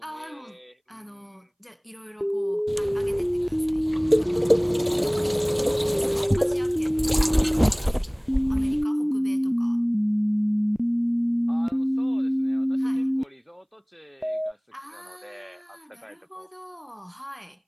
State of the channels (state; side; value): identical; both; correlation 1.00